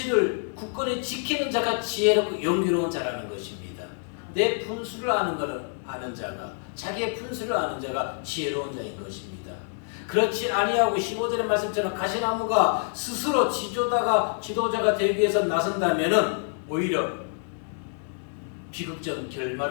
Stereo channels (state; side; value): silent; right; 57 dB below the other